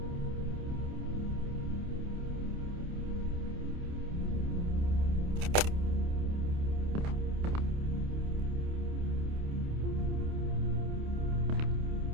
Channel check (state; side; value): late; left; 28 ms